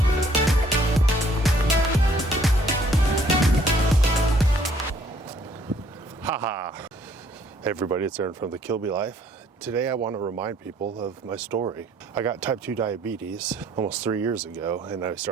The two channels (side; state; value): both; normal; correlation 0.62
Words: Haha. Hey everybody, it's Aaron from the Kilby Life. Today I want to remind people of my story. I got type 2 diabetes almost 3 years ago, and I